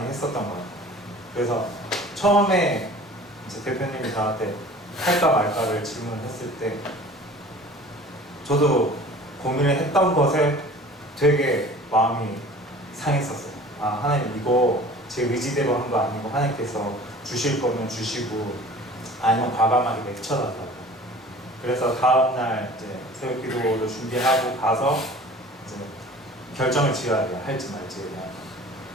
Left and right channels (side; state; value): both; normal; correlation 0.44